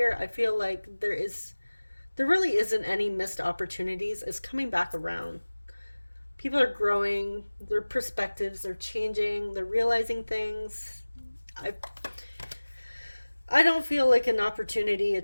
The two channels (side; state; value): both; inverted; correlation -1.00